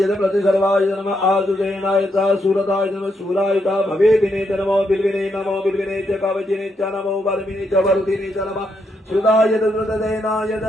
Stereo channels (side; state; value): both; normal; correlation 0.79